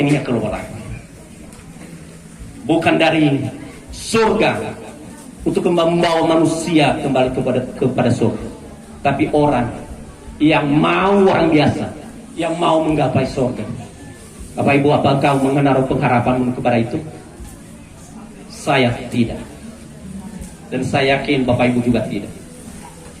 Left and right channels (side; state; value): both; identical; correlation 1.00